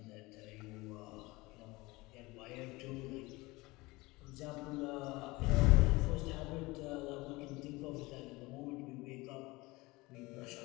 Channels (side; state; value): right; quieter; 22.3 dB